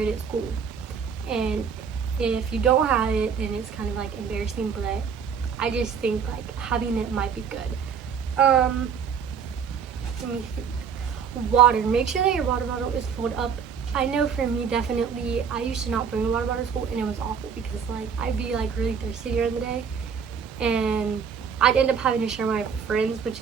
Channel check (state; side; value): quieter; left; 6.8 dB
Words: at school. And if you don't have it, then it's kind of like embarrassing, but I just think like having it might be good. Let me think. Water, make sure that your water bottle is filled up. I know for me, definitely, I used to not bring a water bottle to school, and it was awful, because like I'd be like really thirsty during the day, and I'd end up having to share my friends, which